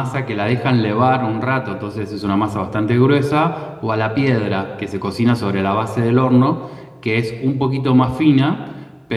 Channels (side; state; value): both; identical; correlation 1.00